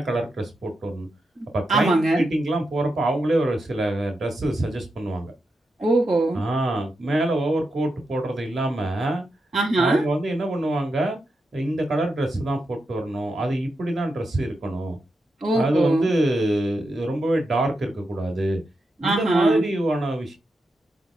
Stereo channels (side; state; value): both; normal; correlation 0.87